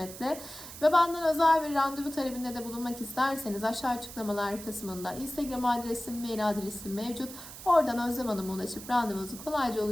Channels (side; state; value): right; noise; hiss, 13 dB below the sound